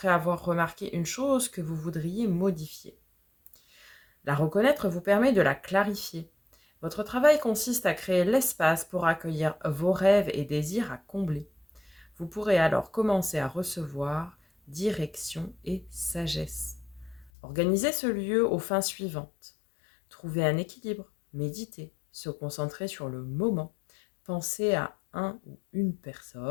avoir remarqué une chose que vous voudriez modifier. La reconnaître vous permet de la clarifier. Votre travail consiste à créer l'espace pour accueillir vos rêves et désirs à combler. Vous pourrez alors commencer à recevoir direction et sagesse. Organisez ce lieu aux fins suivantes. Trouver un équilibre, méditer, se concentrer sur le moment, penser à un ou une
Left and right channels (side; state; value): right; drops out; at 17.3 s